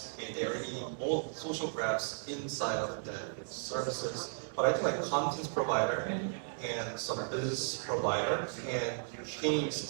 and they already all social graphs inside of the services. But I think like content provider and some business provider can change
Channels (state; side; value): silent; left; digital silence